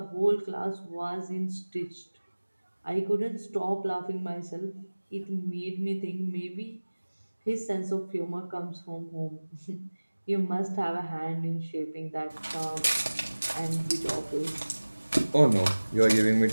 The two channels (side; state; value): both; inverted; correlation -1.00